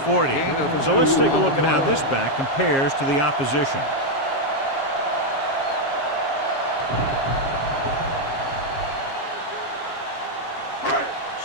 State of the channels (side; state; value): right; late; 7.4 ms